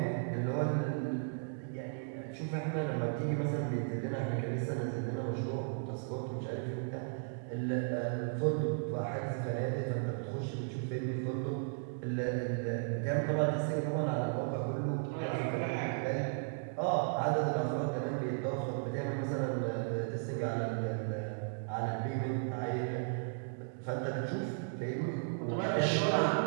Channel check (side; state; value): left; silent; digital silence